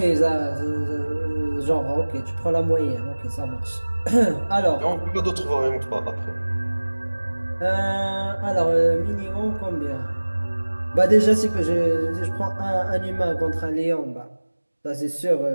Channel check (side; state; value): both; inverted; correlation -1.00